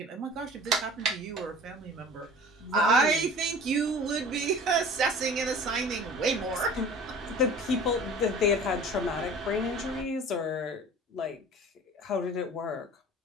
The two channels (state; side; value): normal; both; correlation 0.43